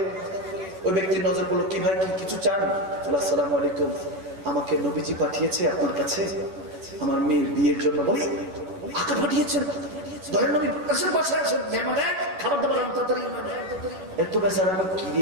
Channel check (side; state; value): left; late; 11 ms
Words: ওই ব্যক্তির নজর পড়লো, কি ভাই কিছু চান? আসসালামু আলাইকুম, আমাকে নবীজি পাঠিয়েছে আপনার কাছে আমার মেয়ের বিয়ের জন্য। বলি আকা পাঠিয়েছেন? দয়াল নবী আসেন, বাসায় আসেন, মেহমান খাবার দাবার তাড়াতাড়ি। এত বেচারা কি